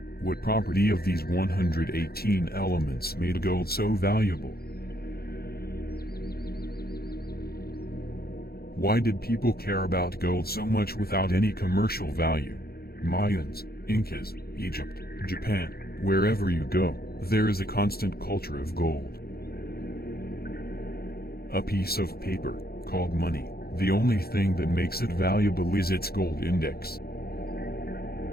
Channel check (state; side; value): late; right; 0.45 ms